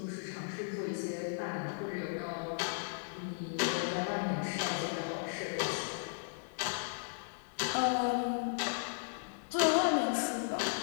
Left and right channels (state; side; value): silent; right; digital silence